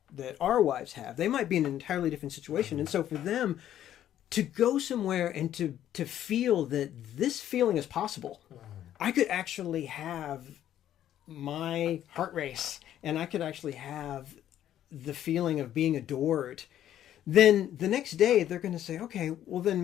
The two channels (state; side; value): quieter; right; 11.4 dB